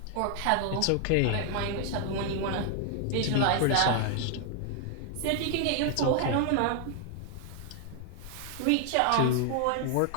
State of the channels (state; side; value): different; both; correlation 0.00